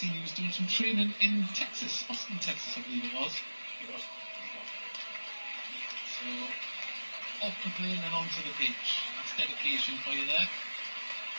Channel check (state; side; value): inverted; both; correlation -1.00